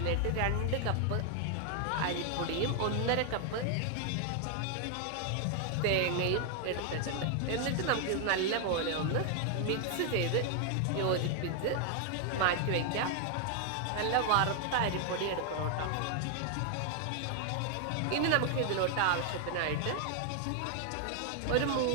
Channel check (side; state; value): both; different; correlation 0.00